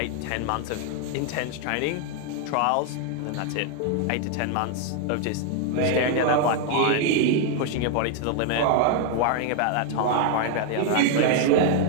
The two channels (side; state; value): both; different; correlation 0.00